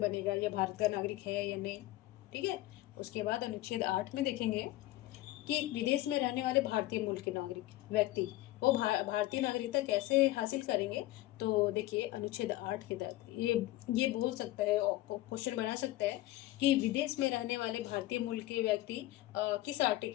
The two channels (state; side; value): quieter; right; 16.6 dB